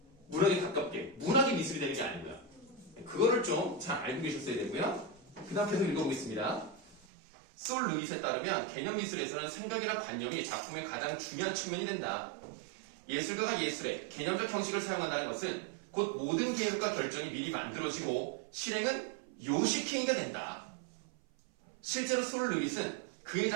문학에 가깝게. 문학이 미술이 되는 게 아니고요. 그거를 좀 잘 알고 계셨어야 되고요. 그 다음 계속 읽어보겠습니다. 솔 루잇에 따르면 개념미술에서는 생각이나 관념이 작품의 가장 중요한 측면이 된다. 예술가가 예술의 개념적 형식을 사용한다는 것은 곧 모든 계획과 결정이 미리 만들어지고 실행은 요식행위가 된다. 실제로 솔 루잇은 그의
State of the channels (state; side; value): drops out; left; at 7.1 s